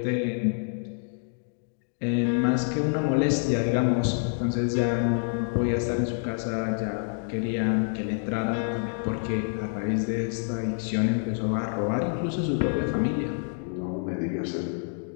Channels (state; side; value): silent; right; 60 dB below the other